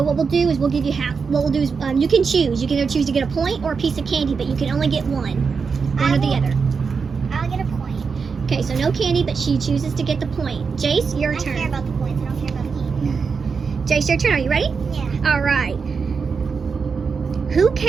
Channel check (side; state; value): left; quieter; 5.4 dB